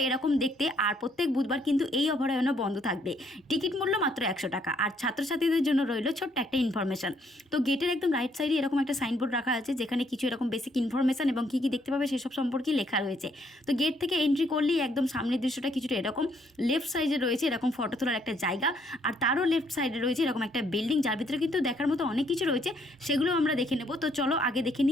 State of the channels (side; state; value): both; normal; correlation 0.69